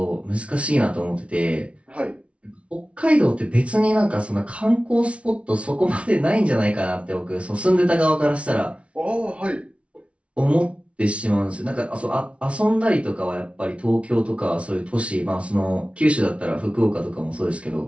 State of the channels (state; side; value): late; left; 0.062 ms